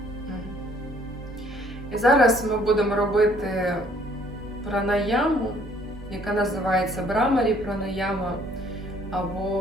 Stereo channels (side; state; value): both; normal; correlation 0.61